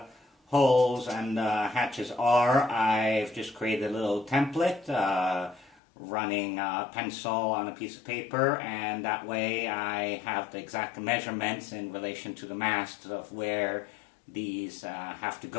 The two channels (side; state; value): right; drops out; at 5.8 s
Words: holes and hatches are, I've just created a little template running a pencil on a piece of paper, and that way I have the exact measurements in relation to the masts of where these have to